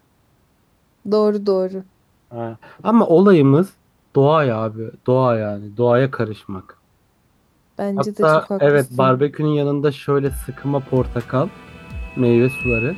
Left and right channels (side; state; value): both; identical; correlation 1.00